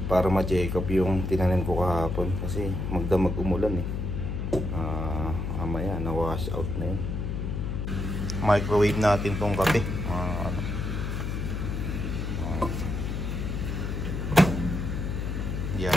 para ma-check up yung tinanim ko kahapon. Kasi magdamag umulan eh. Mamaya na wash out na yun. Microwave natin tong kape mga kano.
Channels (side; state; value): left; noise; hum, 2 dB below the sound